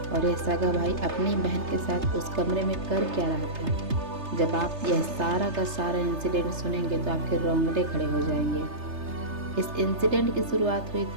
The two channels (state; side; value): late; left; 3.3 ms